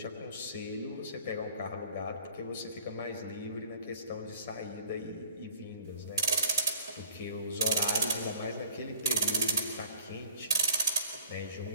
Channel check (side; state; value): both; inverted; correlation -0.51